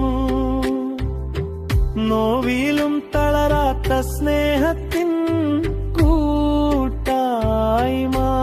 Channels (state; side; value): identical; both; correlation 1.00